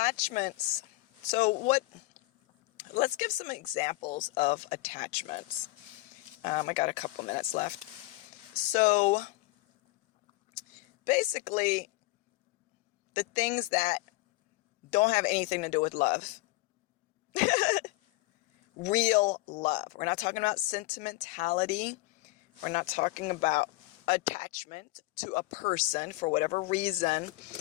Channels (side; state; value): right; quieter; 20.5 dB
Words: Let's give some examples of attachments. I got a couple minutes left. So basically, the things that don't have anything to do with love. Real love. We're not talking about sentimentality. We're not talking about attachment to a person for whatever reason